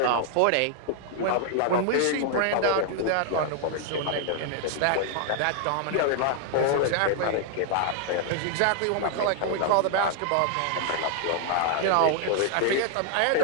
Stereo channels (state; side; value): different; both; correlation 0.00